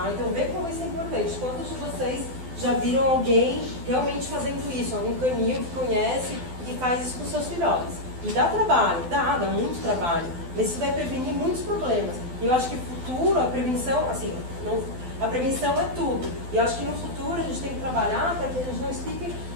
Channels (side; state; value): left; late; 12 ms